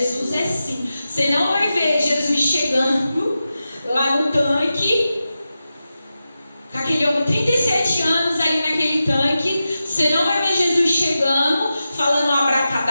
é simples. Você não vai ver Jesus chegando lá no tanque, com aquele homem, 37 anos ali naquele tanque. Você não vai ver Jesus chegando, falando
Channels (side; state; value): both; inverted; correlation -0.92